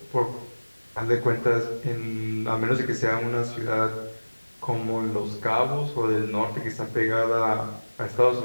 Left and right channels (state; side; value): inverted; both; correlation -1.00